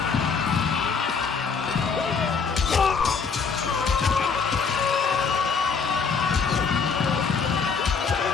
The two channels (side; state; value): right; quieter; 5.5 dB